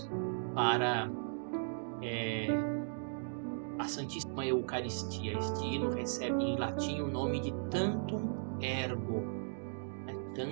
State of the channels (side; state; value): left; silent; digital silence